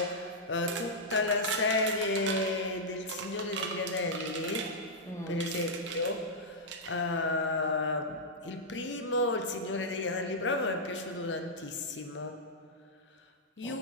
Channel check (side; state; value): both; normal; correlation -0.08